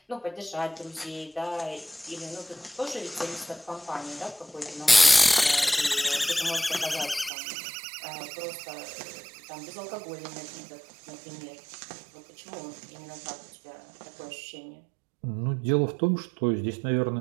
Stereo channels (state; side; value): drops out; left; at 7.3 s